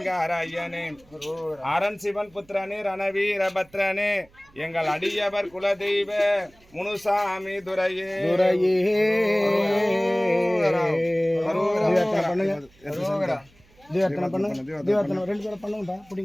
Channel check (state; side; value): noise; right; hum, 29 dB below the sound